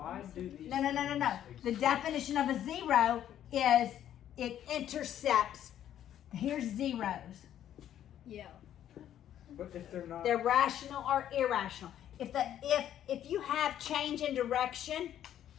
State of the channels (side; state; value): right; quieter; 10.9 dB